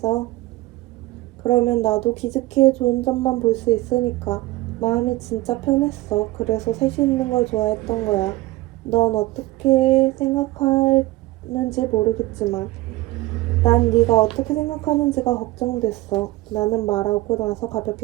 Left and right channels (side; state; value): left; quieter; 18.5 dB